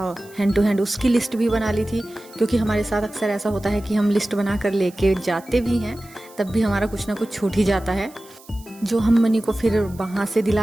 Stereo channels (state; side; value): noise; right; hiss, 24 dB below the sound